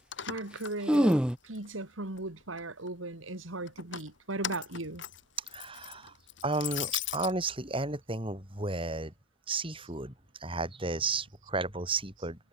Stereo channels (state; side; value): normal; both; correlation 0.43